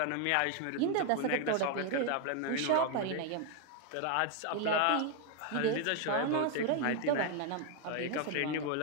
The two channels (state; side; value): different; both; correlation 0.01